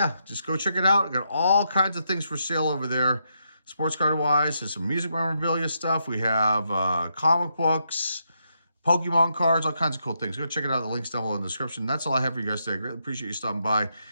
just go check it out. We got all kinds of things for sale over there. Sports card wise, there's some music memorabilia stuff. We have comic books, Pokemon cards, all kinds of cool things. Go check it out. The link's down below in the description. That's all I have for you guys today. I greatly appreciate you stopping by.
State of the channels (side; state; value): both; inverted; correlation -0.80